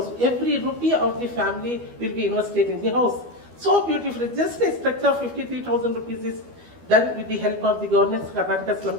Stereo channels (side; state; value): left; late; 12 ms